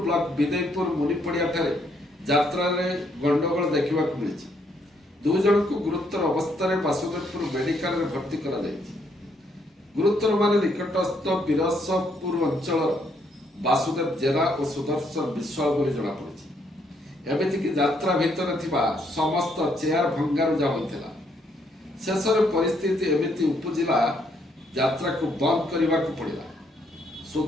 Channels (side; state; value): both; normal; correlation 0.72